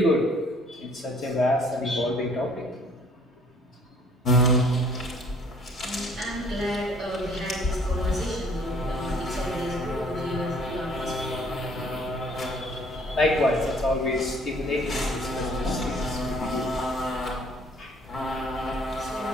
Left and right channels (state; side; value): normal; both; correlation 0.57